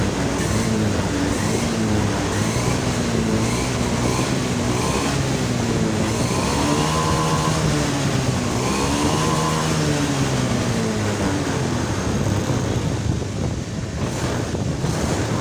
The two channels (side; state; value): both; identical; correlation 1.00